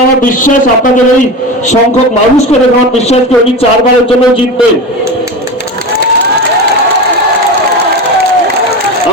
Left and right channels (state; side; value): normal; both; correlation 0.25